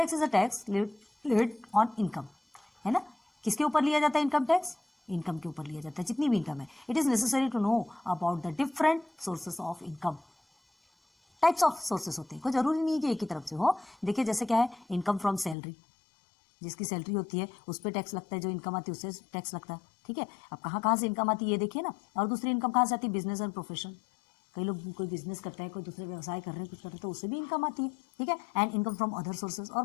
is a tax levied on income, है ना। किसके ऊपर लिया जाता है इनकम टैक्स, इनकम के ऊपर लिया जाता है, जितनी भी इनकम है। It is necessary to know about the different sources of income. Types of sources होते हैं, कोई जरूरी नहीं है कि एक ही तरफ से हो। देखिए जैसे क्या है, इनकम फ्रॉम सैलरी, जिसकी सैलरी होती है उस पर टैक्स लगता है, जो इनकम आती है उससे टैक्स लगता है, ठीक है। अब कहाँ कहाँ से इनकम आती है ये देखिए ना। और दूसरी इनकम कहाँ से आती है, बिजनेस एंड प्रोफेशन, कई लोग कोई बिजनेस करता है, कोई दूसरे व्यवसाय कर रहे हैं, कुछ कर रहे हैं, तो उससे भी इनकम आती है, ठीक है। And income from other sources, और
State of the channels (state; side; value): drops out; right; at 15.6 s